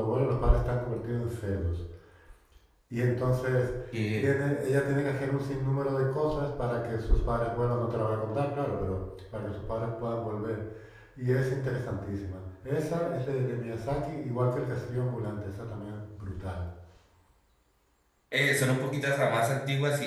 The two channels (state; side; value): identical; both; correlation 1.00